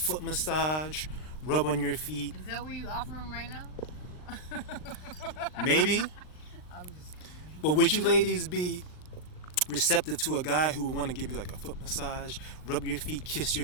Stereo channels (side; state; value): right; late; 39 ms